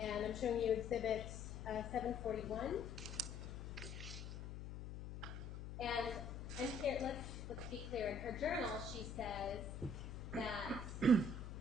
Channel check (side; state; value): left; noise; hum, 7 dB below the sound